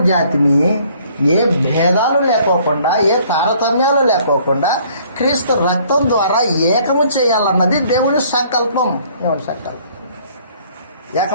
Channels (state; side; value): inverted; both; correlation -0.59